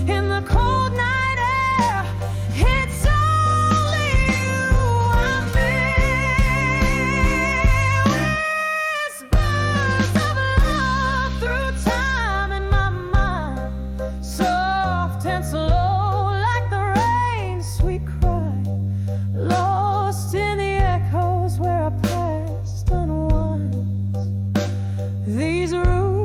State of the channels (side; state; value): both; identical; correlation 1.00